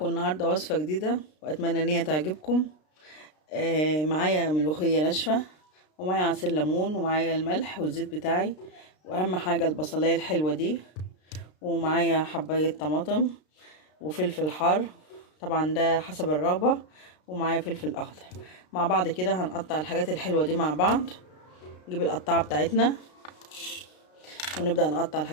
النهارده وصفه جديده واتمنى ان هي تعجبكم. معايا ملوخيه ناشفه، ومعايا عصير ليمون، ومعايا الملح والزيت بتاعي، واهم حاجه البصلايه الحلوه دي، ومعايا حبايه طماطم وفلفل حار، طبعا ده حسب الرغبه، ومعايا فلفل اخضر. مع بعض كده هنقطع الحاجات الحلوه دي مع بعض. نجيب القطاعه بتاعتنا ونبدأ نقطع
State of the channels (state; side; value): late; right; 33 ms